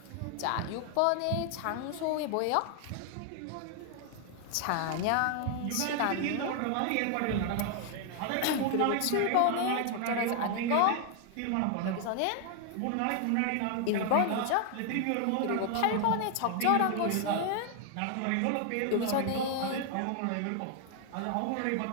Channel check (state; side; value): different; both; correlation 0.00